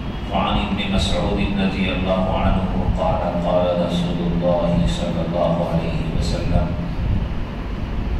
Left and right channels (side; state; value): both; identical; correlation 1.00